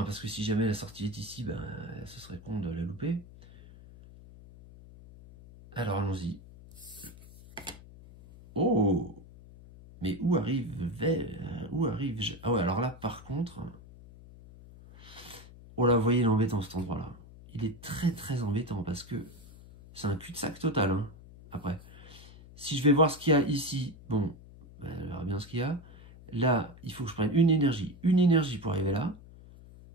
parce que si jamais la sortie est ici, ben, ce serait con de la louper. Alors allons-y. Oh! Mais où arrive-je? Ah ouais, alors là, par contre... Oh là, vous voyez, il est embêtant cet endroit-là. Il est très très embêtant, parce que c'est un cul-de-sac total, hein, après. Si je vais voir ce qu'il y a ici, bon, ben, on verra bien ce qu'il y a. Là, il faut que je prenne une énergie pour arriver là.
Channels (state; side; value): noise; left; hum, 19 dB below the sound